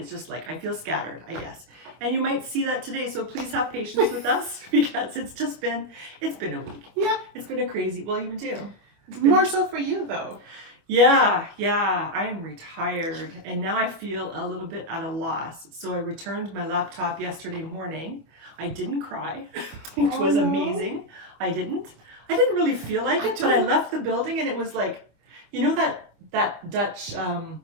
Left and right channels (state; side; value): late; left; 25 ms